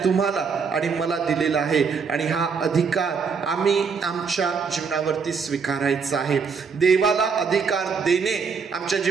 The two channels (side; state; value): left; quieter; 5.6 dB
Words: तुम्हाला आणि मला दिलेलं आहे. आणि हा अधिकार आम्ही आमच्या जीवनावरती स्वीकारायचा आहे. देवाला अधिकार देणे, आमच्या